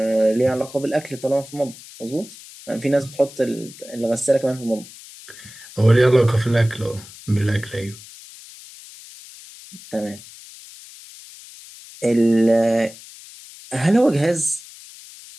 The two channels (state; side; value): noise; left; hiss, 18 dB below the sound